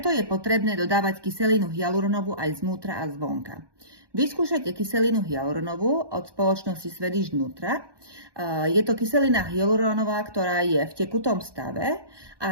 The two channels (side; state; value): left; late; 1.2 ms